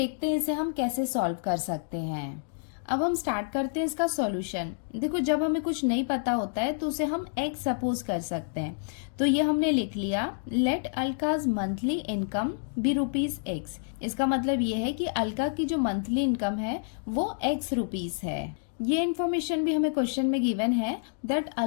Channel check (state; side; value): silent; right; digital silence